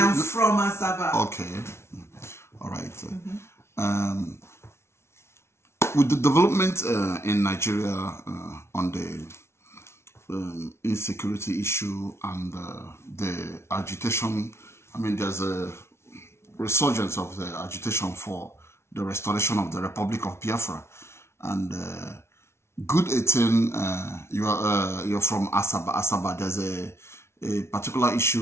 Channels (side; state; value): right; late; 0.13 ms